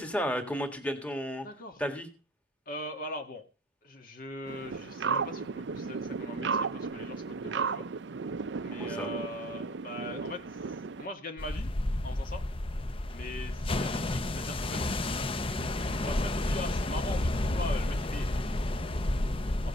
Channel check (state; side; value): normal; both; correlation 0.55